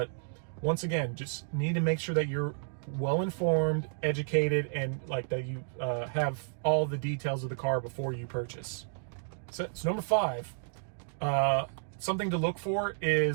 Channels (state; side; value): silent; left; digital silence